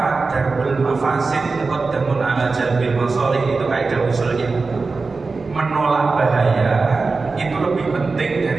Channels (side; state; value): left; quieter; 4.1 dB